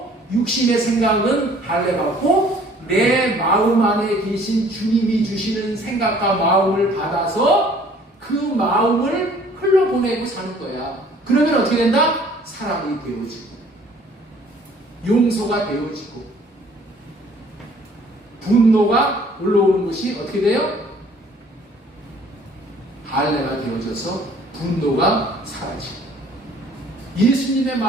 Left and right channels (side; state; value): both; normal; correlation 0.56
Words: 육신의 생각은 할례받고 내 마음 안에 계신 주님이 주시는 생각과 마음을 받아서 그 마음을 흘러보내고 사는 거야. 그러면 어떻게 된다? 사람이 되어지고 용서가 되어지고 분노가 올라오는 것이 어떻게 돼요? 할례가 되어져서 분노가 사라지고 예수님의